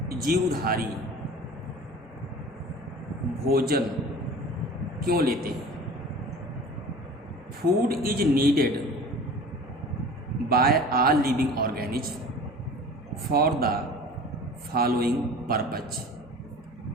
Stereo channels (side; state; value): both; normal; correlation 0.41